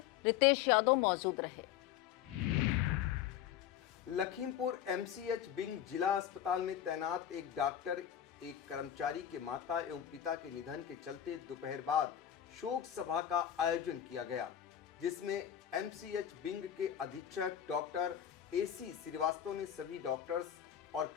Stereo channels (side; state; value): right; quieter; 10.3 dB